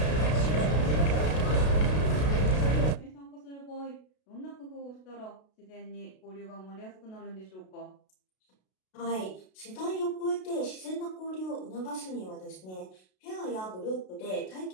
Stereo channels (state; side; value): late; right; 32 ms